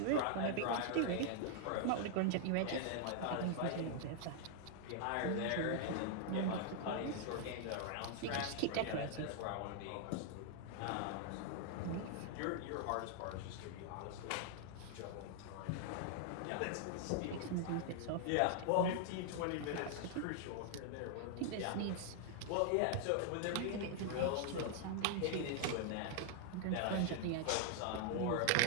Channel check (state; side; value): different; both; correlation 0.00